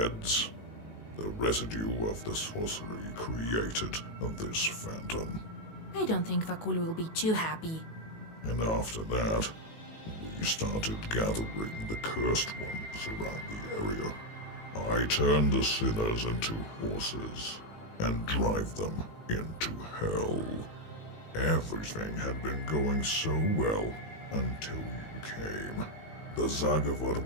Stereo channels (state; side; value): late; right; 19 ms